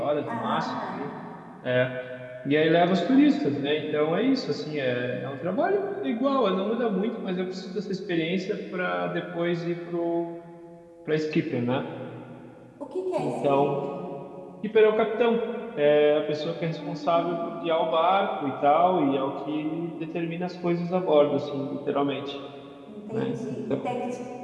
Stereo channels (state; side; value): identical; both; correlation 1.00